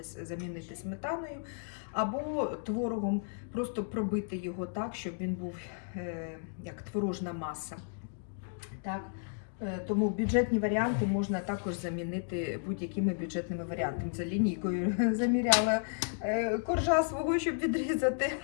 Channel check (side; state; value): right; silent; digital silence